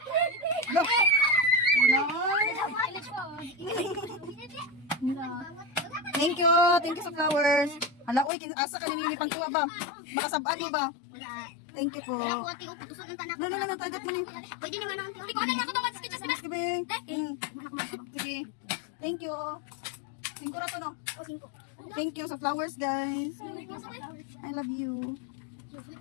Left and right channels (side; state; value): right; drops out; at 8.3 s